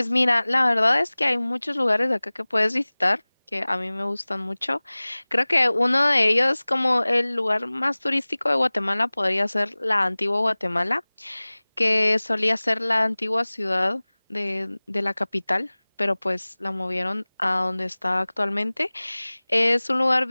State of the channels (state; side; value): inverted; both; correlation -1.00